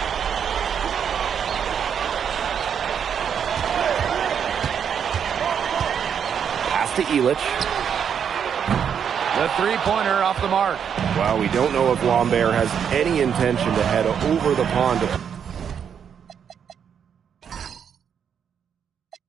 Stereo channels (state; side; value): quieter; left; 7.8 dB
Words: Pass to Elich. The three-pointer off the mark. Well, we don't know if Lambert has any intention to head over the pond to